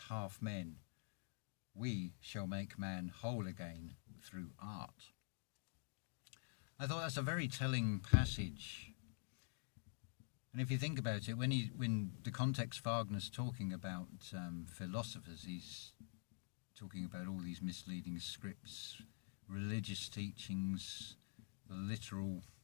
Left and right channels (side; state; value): right; silent; digital silence